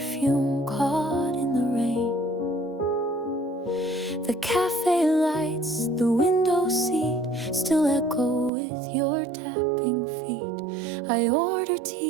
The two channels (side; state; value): left; drops out; at 8.5 s